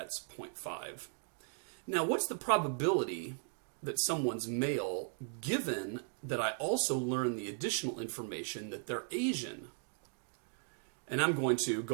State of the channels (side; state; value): left; silent; 53 dB below the other